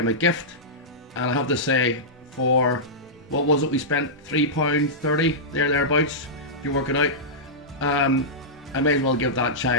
a gift. And I have to say, for what was it, we spent £3.30 thereabouts, if you work it out. I may as well give that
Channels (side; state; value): both; normal; correlation -0.12